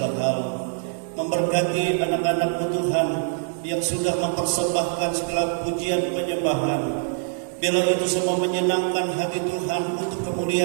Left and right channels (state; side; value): silent; left; digital silence